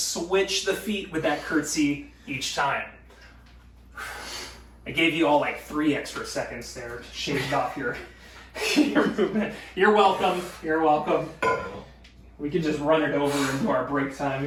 the feet with that curtsy each time. I gave you all like 3 extra seconds there, shaved off your movement. You're welcome. You're welcome. We can just run it over into our break time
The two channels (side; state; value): both; identical; correlation 1.00